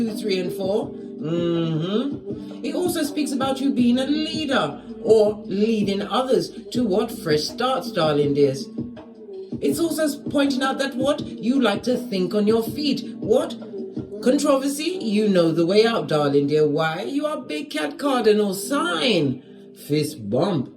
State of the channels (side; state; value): both; identical; correlation 1.00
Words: 3, and 4. It also speaks about you being a leader or leading others to what? Fresh starts, darling dears. It's also pointing out that what? You like to think on your feet. What? Controversy? You know the way out, darling dear. Why? You are big cat cardinal sign. Fist bump.